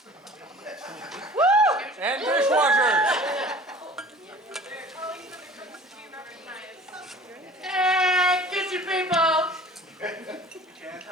Woo! And dishwashers! Hey, kitchen people! Can't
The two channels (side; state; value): both; normal; correlation 0.45